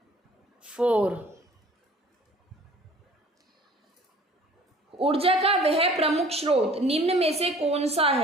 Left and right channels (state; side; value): normal; both; correlation 0.50